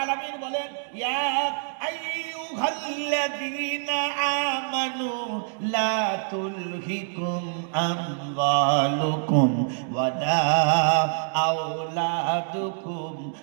আলামিন বলেন, ইয়া আইয়ুহাল্লাযীনা আমানু লা তুলহিকুম আমওয়ালুকুম ওয়ালা আওলাদুকুম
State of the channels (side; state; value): left; silent; digital silence